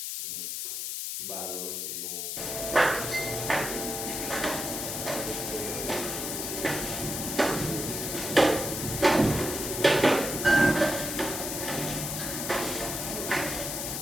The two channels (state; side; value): noise; left; hiss, 4 dB below the sound